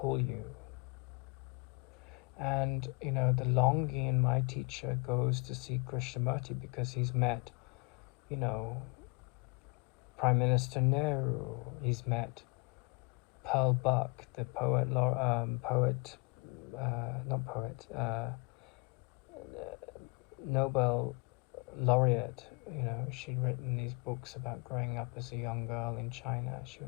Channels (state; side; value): quieter; right; 29.4 dB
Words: you. And, the longing in my teacher goes to see Krishnamurti because he's met, Prime Minister Nehru. He's met Pearl Buck, the Nobel laureate. She'd written these books about growing up as a young girl in China. She